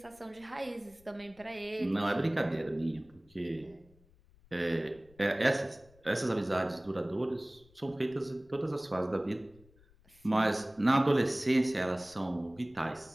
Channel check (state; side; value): noise; left; rumble, 28 dB below the sound